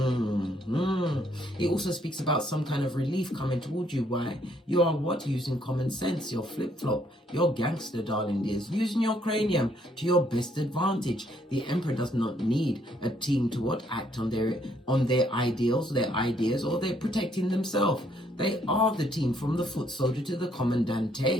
It also speaks about some kind of relief coming towards you. Why? You are what? Using common sense, your flip-flop, your gangster, darling dears. Using your cranium to your best advantage. The Emperor does not need a team to what? Act on their ideals, their ideas, or they're protecting themselves. They are the team, from the foot soldier to the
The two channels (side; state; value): both; normal; correlation 0.69